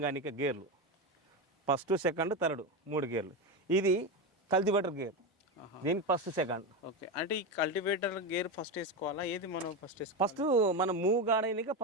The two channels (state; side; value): normal; both; correlation 0.15